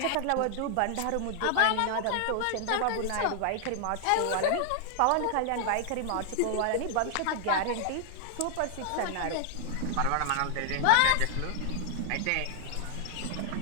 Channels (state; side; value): different; both; correlation 0.00